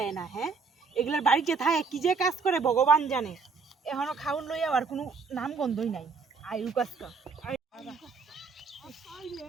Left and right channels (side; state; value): left; quieter; 4.9 dB